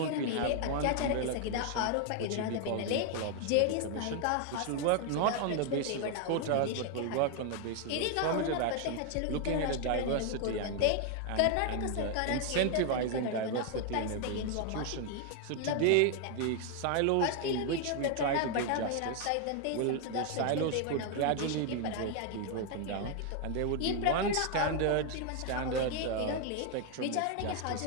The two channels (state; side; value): different; both; correlation 0.00